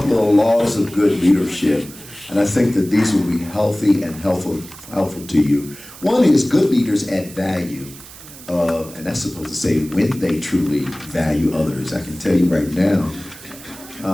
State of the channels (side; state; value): right; noise; hiss, 17 dB below the sound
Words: of laws of good leadership. And I think that these will be healthy and helpful to you. One is good leaders add value. And that's supposed to say when they truly value others. I can tell you right now,